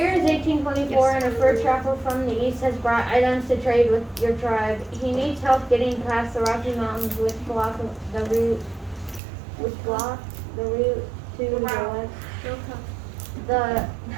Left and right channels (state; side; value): drops out; left; at 9.2 s